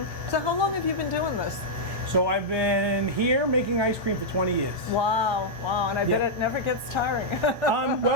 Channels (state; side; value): normal; both; correlation -0.07